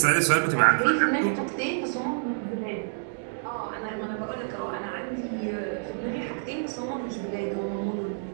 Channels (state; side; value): silent; left; digital silence